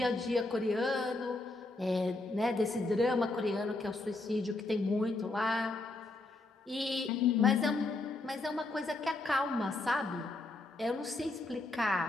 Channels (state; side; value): quieter; right; 3.0 dB